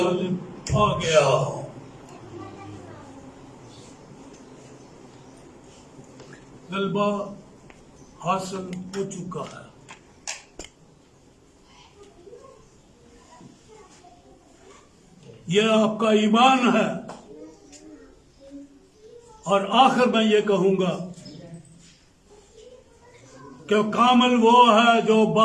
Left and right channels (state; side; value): identical; both; correlation 1.00